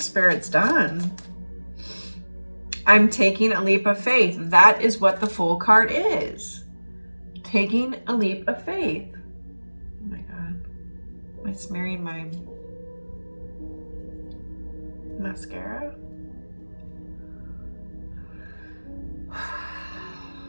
Spirit's done. I'm taking a leap of faith. That is what the Fool card is. Taking a leap of faith. Oh my God. Am I smearing my mascara?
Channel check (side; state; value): both; inverted; correlation -1.00